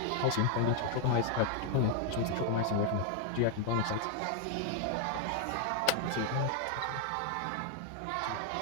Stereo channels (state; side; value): different; both; correlation 0.00